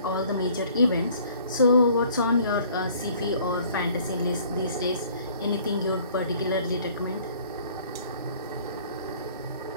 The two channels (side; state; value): both; inverted; correlation -0.55